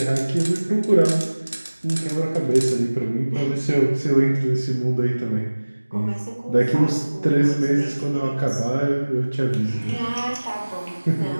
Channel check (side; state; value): both; inverted; correlation -1.00